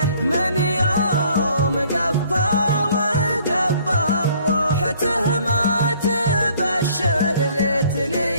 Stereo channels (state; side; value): inverted; both; correlation -0.59